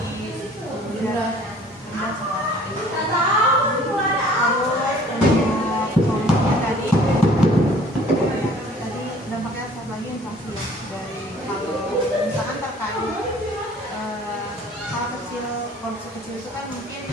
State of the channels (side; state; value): both; normal; correlation 0.53